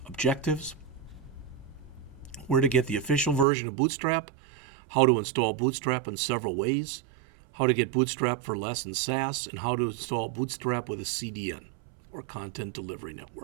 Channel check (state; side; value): drops out; left; at 3.5 s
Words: objectives: where to get the official version of Bootstrap, how to install Bootstrap in several ways, how to get Bootstrap for less in SAS, and how to install Bootstrap with a CDN, or Content Delivery